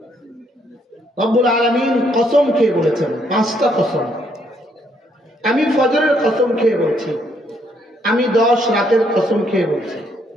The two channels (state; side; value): normal; both; correlation 0.71